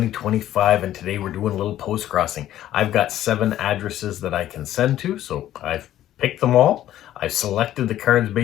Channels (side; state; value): right; quieter; 12.7 dB